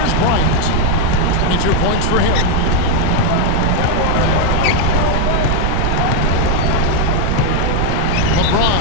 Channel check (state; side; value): different; both; correlation 0.01